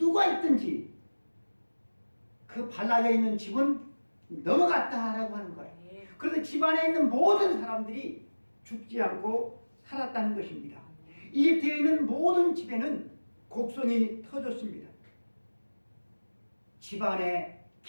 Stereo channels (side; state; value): both; inverted; correlation -1.00